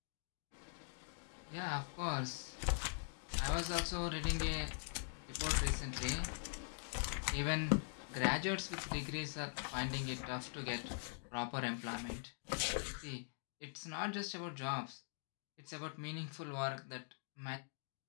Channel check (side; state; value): right; silent; digital silence